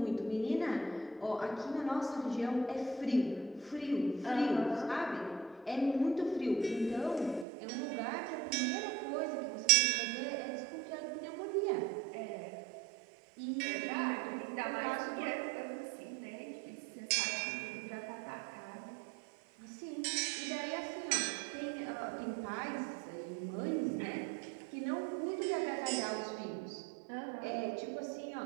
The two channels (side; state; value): left; drops out; at 7.5 s